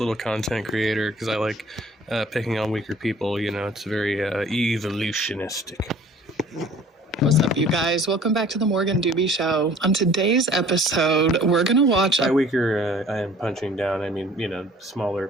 content creator because I like picking on weaker people. It's very evolutionistic. What's up, you guys? Welcome back to the Morgan Doobie Show. On today's episode, we're going to watch... By weaker, I am punching down. I mean, smaller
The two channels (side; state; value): both; normal; correlation 0.51